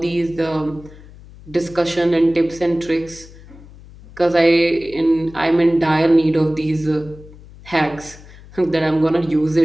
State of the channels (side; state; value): left; noise; hum, 20 dB below the sound